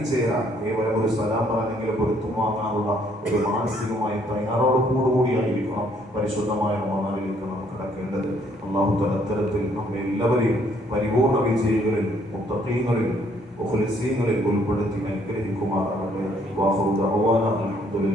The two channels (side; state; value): both; normal; correlation 0.66